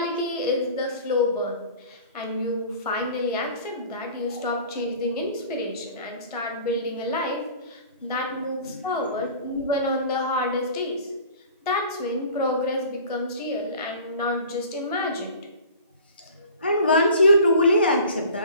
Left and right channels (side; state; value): both; inverted; correlation -0.44